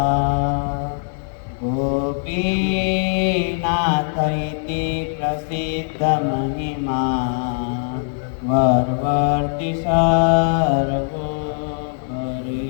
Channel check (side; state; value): right; silent; digital silence